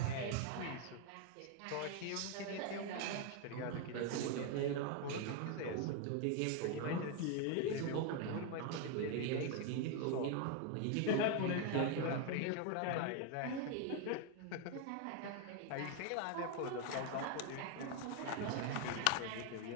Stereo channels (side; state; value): both; different; correlation 0.01